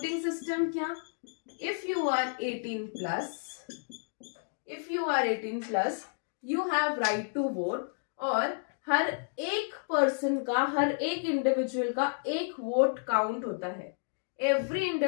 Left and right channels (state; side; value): silent; right; digital silence